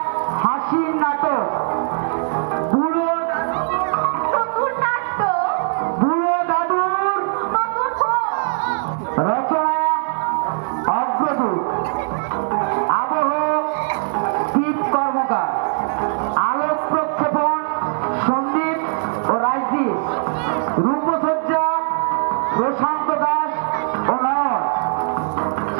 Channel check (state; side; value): silent; left; digital silence